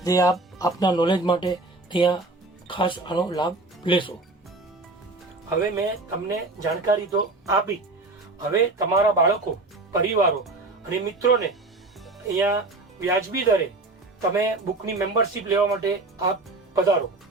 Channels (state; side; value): quieter; left; 3.1 dB